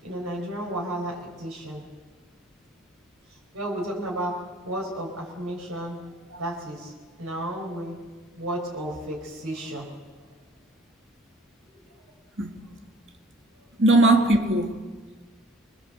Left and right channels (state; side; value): normal; both; correlation 0.53